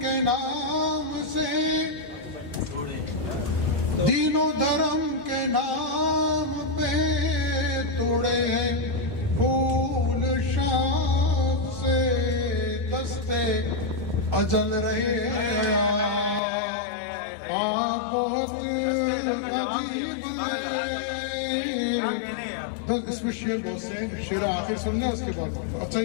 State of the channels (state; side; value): drops out; right; at 16.4 s